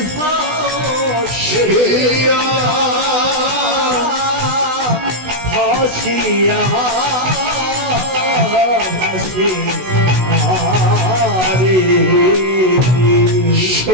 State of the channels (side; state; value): left; late; 16 ms